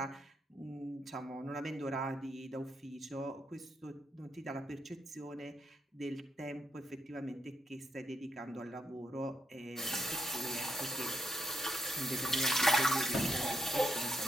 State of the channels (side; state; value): both; normal; correlation 0.79